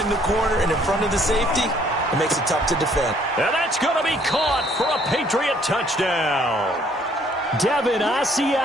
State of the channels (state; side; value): normal; both; correlation 0.63